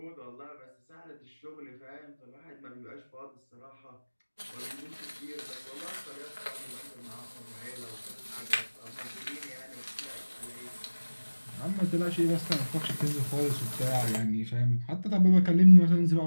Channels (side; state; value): both; inverted; correlation -1.00